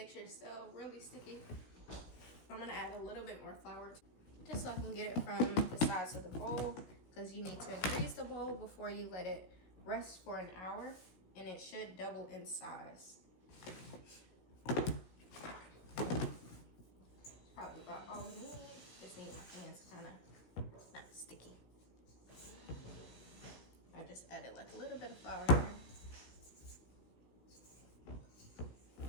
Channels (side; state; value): right; late; 16 ms